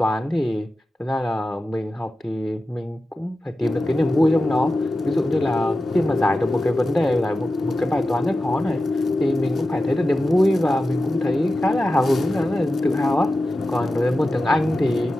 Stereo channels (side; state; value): both; normal; correlation 0.93